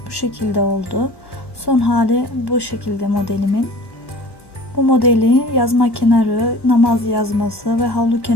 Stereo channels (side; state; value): right; late; 1.2 ms